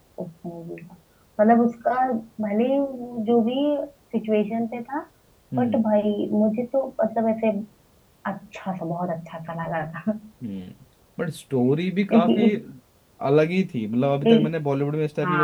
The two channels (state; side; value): identical; both; correlation 1.00